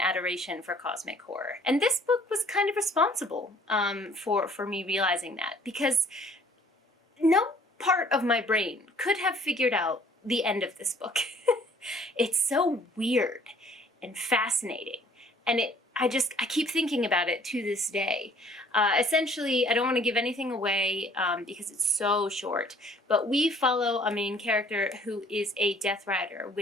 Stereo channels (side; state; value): both; normal; correlation 0.57